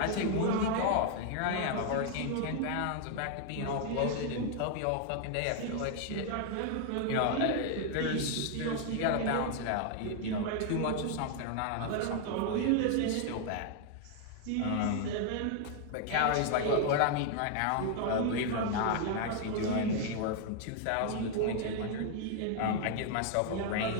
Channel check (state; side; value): different; both; correlation 0.00